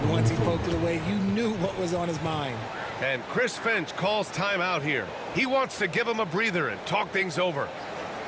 once he poked it away, you knew what was on his mind. And Chris Finch calls timeout here. He wants to give him a breather and talk things over.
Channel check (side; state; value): both; identical; correlation 1.00